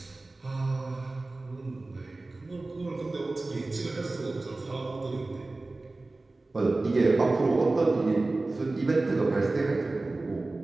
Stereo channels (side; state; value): left; quieter; 3.2 dB